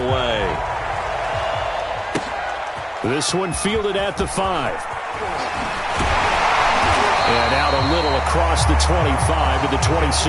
away. This one fielded at the 5. And out a little across the 25 to the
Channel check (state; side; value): identical; both; correlation 1.00